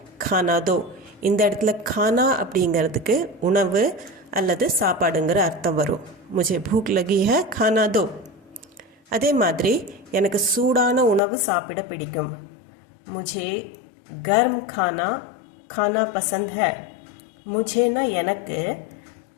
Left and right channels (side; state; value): right; drops out; at 11.2 s